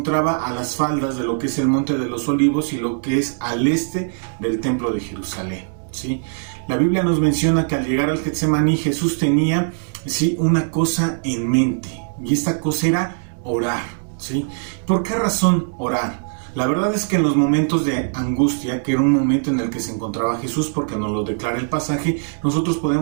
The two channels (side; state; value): left; silent; digital silence